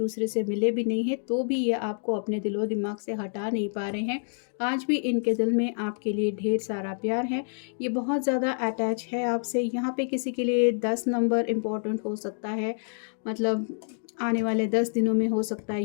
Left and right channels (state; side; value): silent; right; digital silence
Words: से मिले भी नहीं हैं, तो भी ये आपको अपने दिलो दिमाग से हटा नहीं पा रहे हैं। आज भी इनके दिल में आपके लिए ढेर सारा प्यार है। ये बहुत ज़्यादा अटैच है आपसे। यहाँ पे किसी के लिए 10 नंबर इम्पोर्टेंट हो सकता है, मतलब आने वाले 10 दिनों में हो सकता है